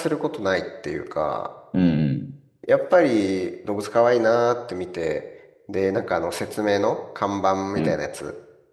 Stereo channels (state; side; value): identical; both; correlation 1.00